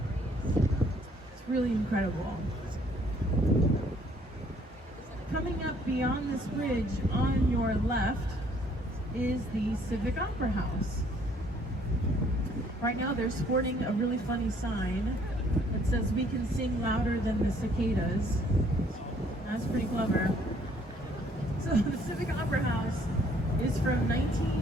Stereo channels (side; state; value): both; normal; correlation 0.63